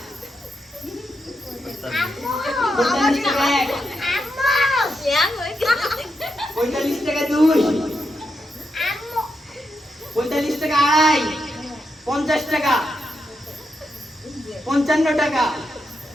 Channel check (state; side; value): normal; both; correlation 0.84